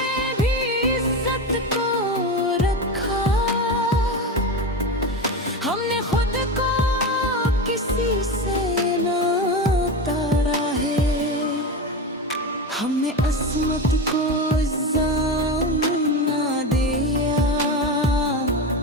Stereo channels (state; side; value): normal; both; correlation 0.20